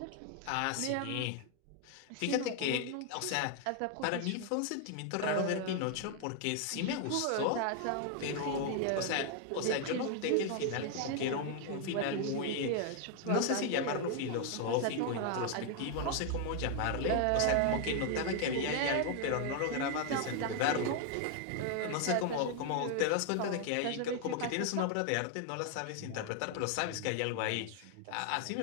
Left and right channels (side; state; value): both; different; correlation 0.00